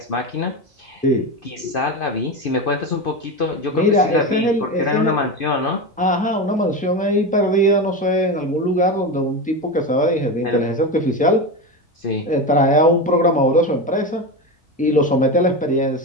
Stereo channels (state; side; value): normal; both; correlation 0.20